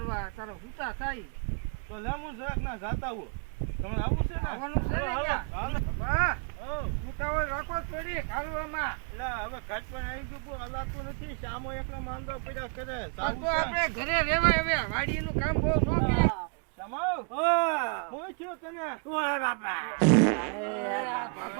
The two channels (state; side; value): quieter; left; 36.3 dB